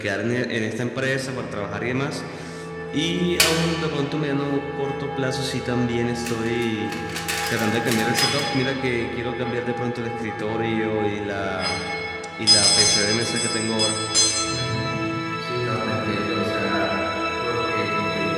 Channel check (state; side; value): identical; both; correlation 1.00